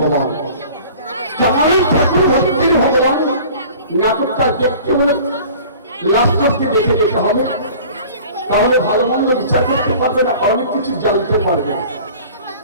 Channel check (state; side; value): inverted; both; correlation -0.45